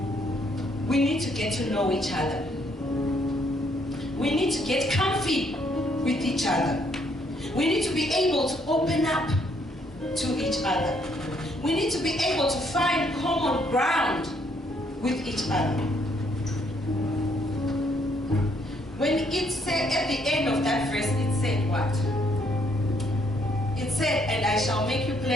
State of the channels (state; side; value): normal; both; correlation 0.69